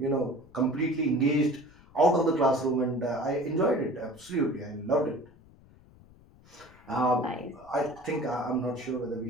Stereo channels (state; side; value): noise; left; rumble, 25 dB below the sound